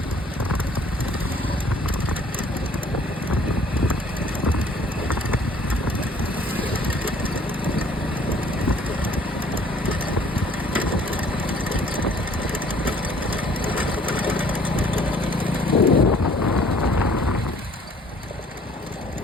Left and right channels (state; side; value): normal; both; correlation 0.57